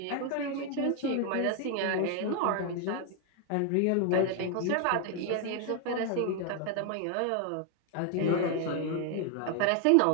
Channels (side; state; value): both; different; correlation 0.01